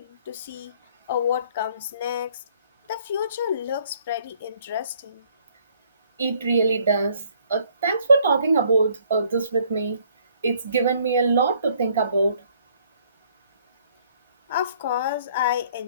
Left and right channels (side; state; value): both; inverted; correlation -0.62